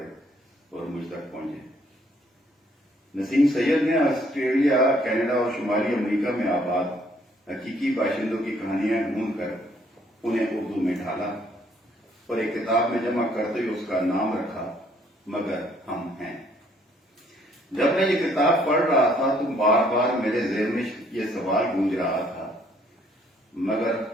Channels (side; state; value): both; normal; correlation 0.65